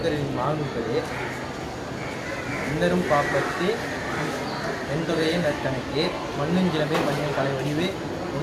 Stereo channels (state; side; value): identical; both; correlation 1.00